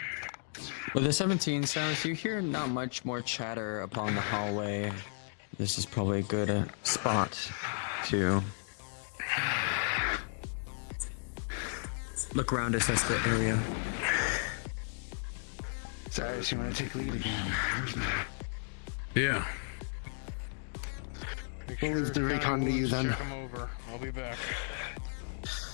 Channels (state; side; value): silent; right; digital silence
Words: With the 17, Cyrus, you hear not much more chatter upon the hallway. This is probably a good spot to look around, assess the area. Cyrus, you want to take lead again? Yeah. We'll leave the recon to you then. Check him over. I'll be back.